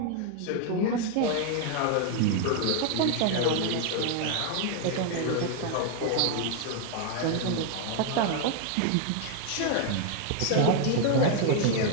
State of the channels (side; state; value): both; different; correlation 0.00